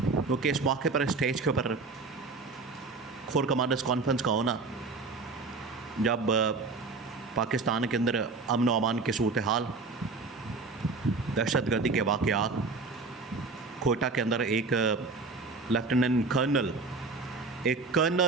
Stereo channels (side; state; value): left; quieter; 4.0 dB